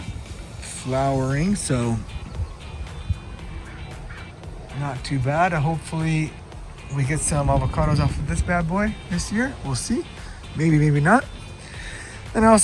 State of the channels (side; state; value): both; identical; correlation 1.00